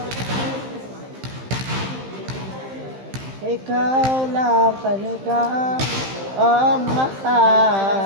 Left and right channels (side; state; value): left; late; 15 ms